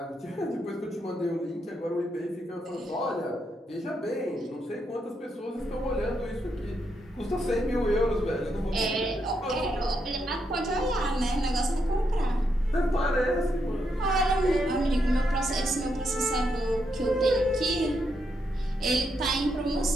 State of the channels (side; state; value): both; normal; correlation 0.80